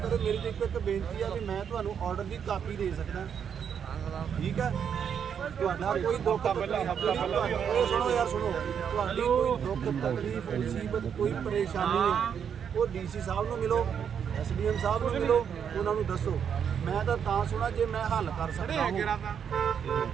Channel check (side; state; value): left; quieter; 7.8 dB